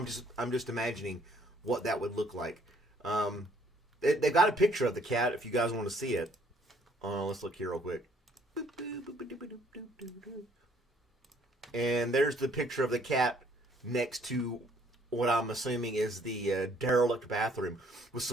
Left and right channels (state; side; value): normal; both; correlation 0.63